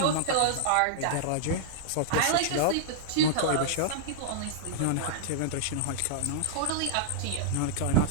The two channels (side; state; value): both; different; correlation -0.02